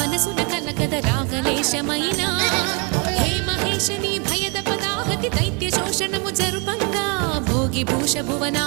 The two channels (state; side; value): quieter; left; 32.0 dB